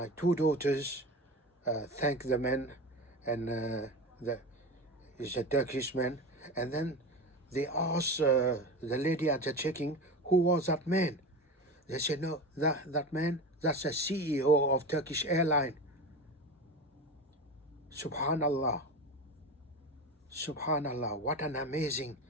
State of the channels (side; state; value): both; normal; correlation 0.27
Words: two daughters thanked the man, and he's a Turkish man, and then they asked the lady at the checking, who was that man? They said, no, that man, that's the CEO of Turkish airline. Subhanallah. Subhanallah, what an amazing